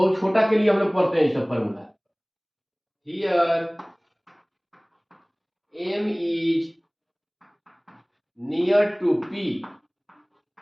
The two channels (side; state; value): both; identical; correlation 1.00